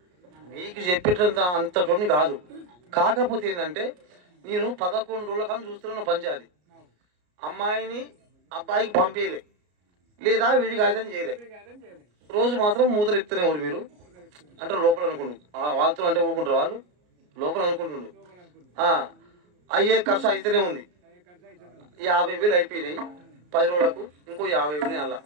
మీకు చెప్పేటంత అంతటోని కాదు, కాకపోతే ఏంటంటే నేను 11 రోజుల కాలం చూస్తున్నా పంచాయతీ, అమ్మాయిని అబ్బాయికి పంపించలే, లేదా వీడికి ఆయుధం చేయలే, రోజు మాత్రం మూతలు ఇస్తూనే ఎవరు మీరు అంటే లోపల అనుకుంటు, వాళ్ళతో అంటే ఊరుకుంటారు, వాళ్ళు లోపల అనుకుంటుండు. అయ్యే ఖర్చు అయితేనే ఉంది. 50,000 అయిపోయినాయి, 10 రోజులకు ఇంకో 50,000 అలా,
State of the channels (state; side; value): late; left; 33 ms